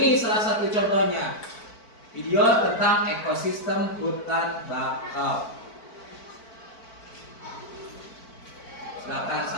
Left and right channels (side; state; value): right; late; 4.5 ms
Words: salah satu contohnya. Video tentang ekosistem hutan bakau. Silakan